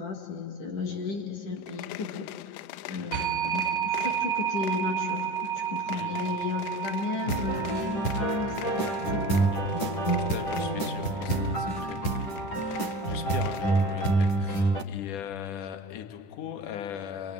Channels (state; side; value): late; right; 10 ms